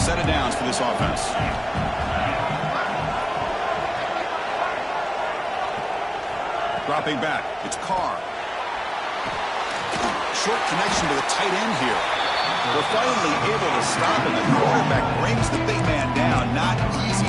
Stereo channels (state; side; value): identical; both; correlation 1.00